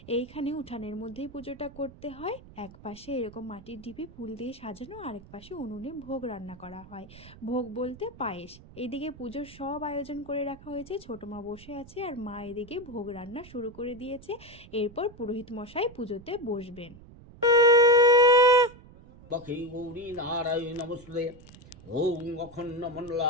এইখানে উঠানের মধ্যেই পুজোটা করতে হয়। এক পাশে এরকম মাটির ঢিপি ফুল দিয়ে সাজানো, আরেক পাশে উনুনে ভোগ রান্না করা হয়। ভোগ বলতে পায়েস। এইদিকে পুজোর সব আয়োজন করে রাখা হয়েছে, ছোট মা বসে আছে আর মা এদিকে ভোগ রান্না শুরু করে দিয়েছে। এরপর পুরোহিত মশাই পুজোতে বসবেন। ওং অখণ্ড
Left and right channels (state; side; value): noise; right; rumble, 20 dB below the sound